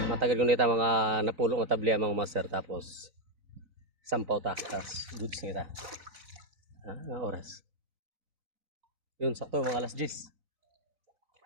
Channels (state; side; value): late; left; 3.9 ms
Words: Matagal ko nita mga napulong na tabli mga master tapos sampaw ta tapos goods nita. Nga oras. Yun sakto mga alas 10.